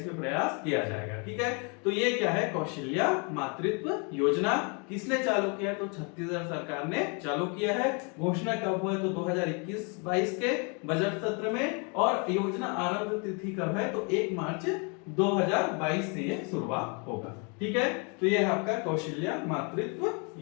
प्रयास किया जाएगा, ठीक है। तो ये क्या है, कौशल्या मातृत्व योजना। किसने चालू किया, तो छत्तीसगढ़ सरकार ने चालू किया है। घोषणा कब हुआ है, तो 2021-22 के बजट सत्र में। और योजना आरंभ तिथि कब है, तो 1 मार्च 2022 से ये शुरुआत होगा, ठीक है। तो ये है आपका कौशल्या मातृत्व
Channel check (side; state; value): right; quieter; 35.0 dB